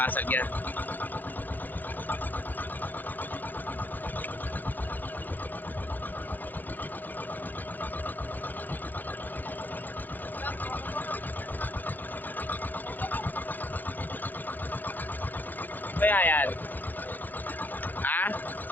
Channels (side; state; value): right; late; 0.087 ms